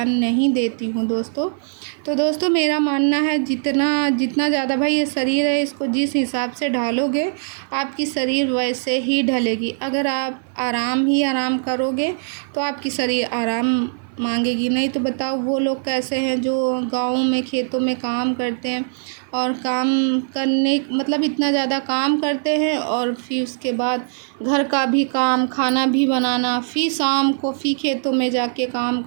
नहीं देती हूँ दोस्तों। तो दोस्तों मेरा मानना है जितना ज़्यादा भाई ये शरीर है, इसको जिस हिसाब से ढालोगे आपकी शरीर वैसे ही ढलेगी। अगर आप आराम करोगे तो आपकी शरीर आराम मांगेगी। नहीं तो बताओ वो लोग कैसे हैं जो गाँव में खेतों में काम करते हैं और काम करने मतलब इतना ज़्यादा काम करते हैं और फिर उसके बाद घर का भी काम, खाना भी बनाना, फिर शाम को फिर खेतों में जाके काम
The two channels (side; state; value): left; silent; 60 dB below the other